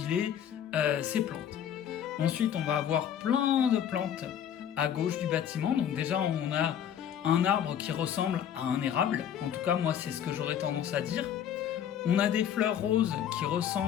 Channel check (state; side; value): quieter; right; 9.4 dB